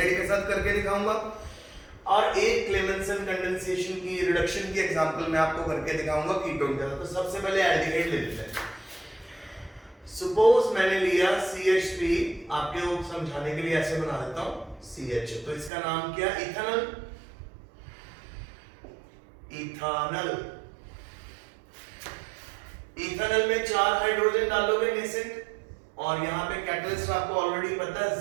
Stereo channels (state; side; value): drops out; left; at 15.7 s